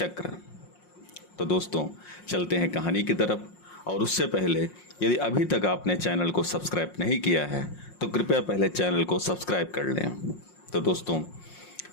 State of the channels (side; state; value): right; late; 5.6 ms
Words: तो दोस्तों, चलते हैं कहानी की तरफ। और उससे पहले यदि अभी तक आपने चैनल को सब्सक्राइब नहीं किया है तो कृपया पहले चैनल को सब्सक्राइब कर लें। तो दोस्तों,